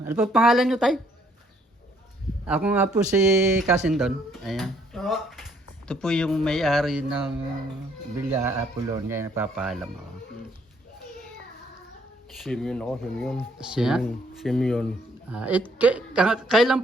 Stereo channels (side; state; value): both; normal; correlation 0.66